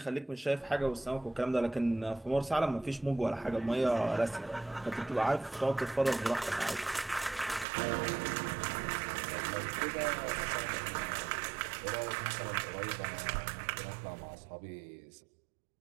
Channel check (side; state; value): left; drops out; at 7.7 s